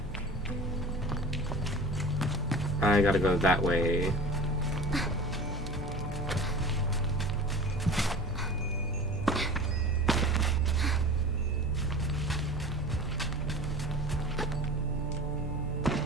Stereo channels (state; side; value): normal; both; correlation 0.37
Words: I gotta go that way.